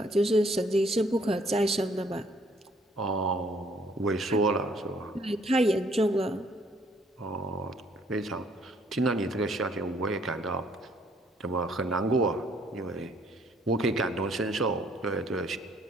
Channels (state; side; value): normal; both; correlation 0.64